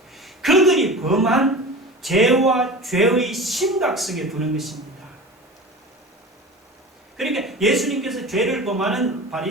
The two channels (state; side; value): normal; both; correlation 0.34